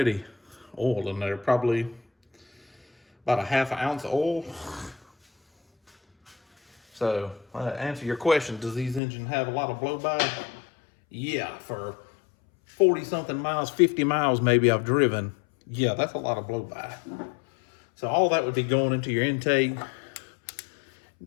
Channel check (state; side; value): drops out; right; at 9.0 s